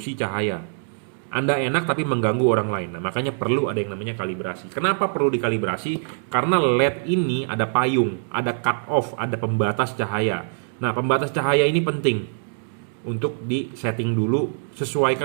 cahaya. Anda enak tapi mengganggu orang lain. Nah, makanya perlu ada yang namanya kalibrasi. Kenapa perlu dikalibrasi? Karena LED ini ada payung, ada cut off, ada pembatas cahaya. Nah, pembatas cahaya ini penting untuk di setting dulu,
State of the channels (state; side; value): silent; left; digital silence